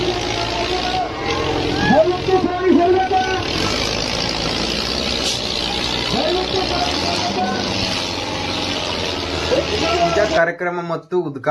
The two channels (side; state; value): both; identical; correlation 1.00